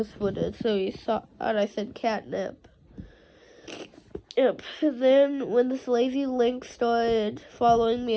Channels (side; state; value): both; identical; correlation 1.00